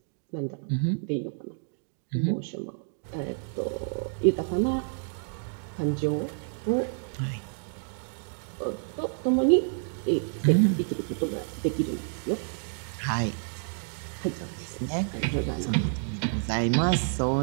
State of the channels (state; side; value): silent; left; 59 dB below the other